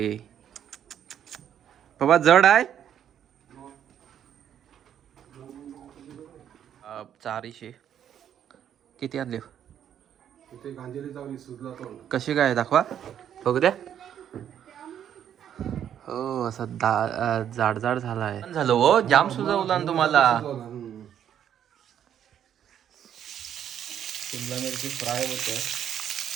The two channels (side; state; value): left; quieter; 9.6 dB